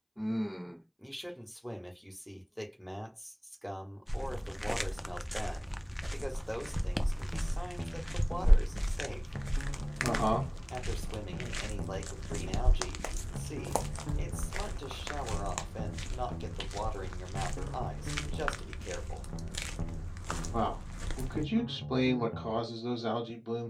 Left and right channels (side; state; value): both; identical; correlation 1.00